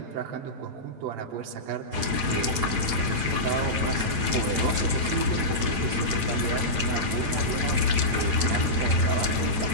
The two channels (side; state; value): left; late; 8.9 ms